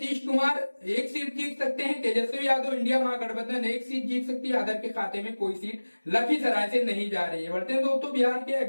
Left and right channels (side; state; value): both; inverted; correlation -1.00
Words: कुमार 1 सीट जीत सकते हैं, तेजस्वी यादव इंडिया महागठबंधन 1 सीट जीत सकती है, अदर के खाते में कोई सीट लखीसराय से नहीं जा रही है। बढ़ते हैं दोस्तों बिहार के